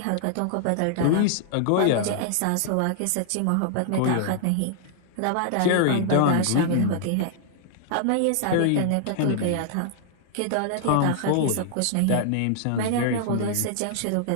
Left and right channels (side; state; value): both; different; correlation -0.01